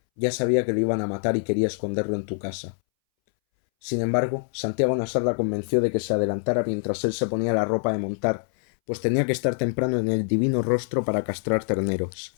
ya sabía que lo iban a matar y quería esconderlo en tu casa. Sin embargo, Santiago Nassar la convenció de que se adelantara mientras él se ponía la ropa de montar, pues tenía que estar temprano en el divino rostro para castrar terneros.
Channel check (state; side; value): silent; right; 62 dB below the other